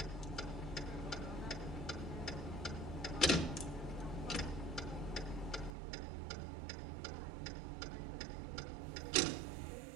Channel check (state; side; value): drops out; left; at 5.8 s